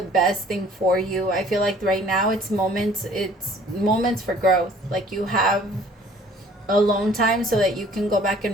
best thing for you. I feel like right now it's moments for growth. Like you have alone time so that you can go back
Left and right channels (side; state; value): both; normal; correlation 0.54